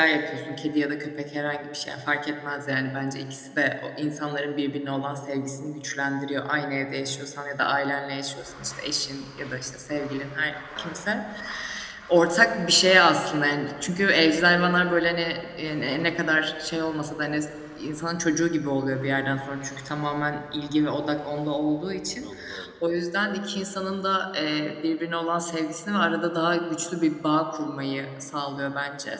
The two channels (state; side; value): identical; both; correlation 1.00